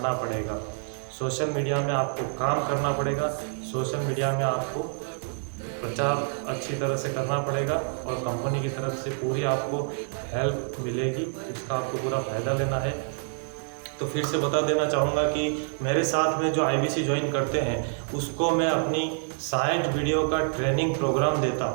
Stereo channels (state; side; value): silent; left; 60 dB below the other